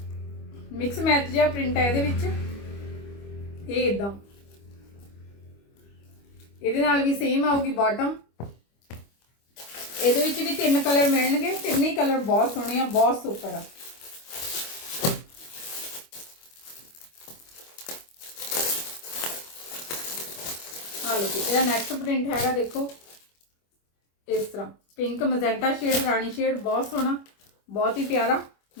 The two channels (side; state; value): right; late; 25 ms